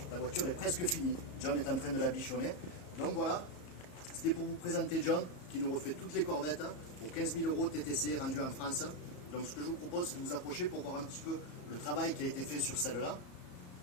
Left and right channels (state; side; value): late; right; 34 ms